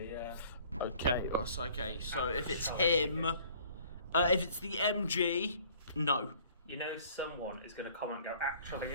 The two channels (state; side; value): inverted; both; correlation -0.54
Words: yeah. Okay, okay. So if it's him, if it's the MG, no. You know, someone is going to comment and go, actually,